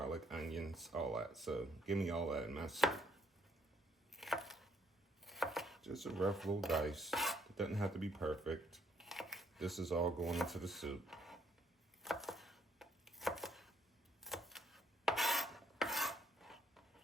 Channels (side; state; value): both; normal; correlation 0.68